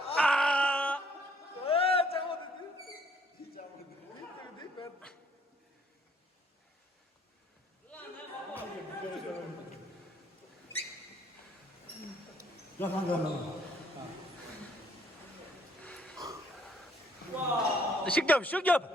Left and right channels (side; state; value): both; normal; correlation 0.65